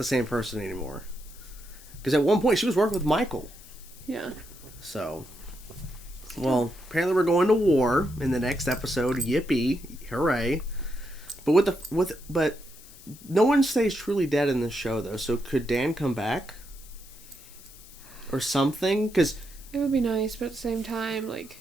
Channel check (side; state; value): left; noise; hiss, 20 dB below the sound